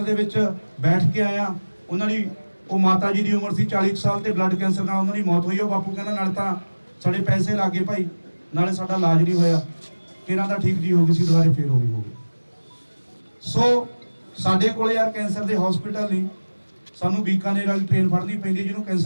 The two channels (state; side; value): inverted; both; correlation -1.00